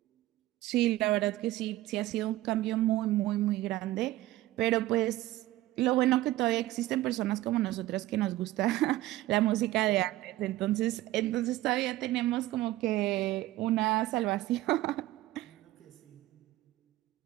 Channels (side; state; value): left; quieter; 16.3 dB